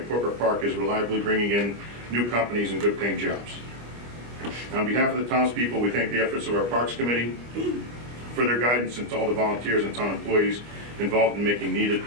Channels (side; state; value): left; late; 25 ms